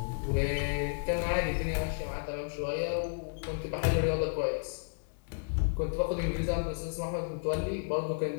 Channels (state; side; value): silent; right; digital silence